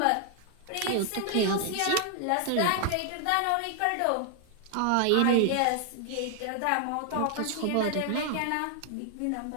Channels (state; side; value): different; both; correlation 0.00